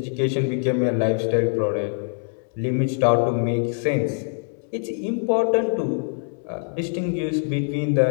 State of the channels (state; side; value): silent; right; 56 dB below the other